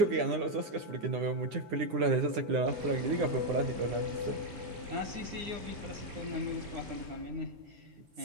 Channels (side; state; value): left; late; 9.8 ms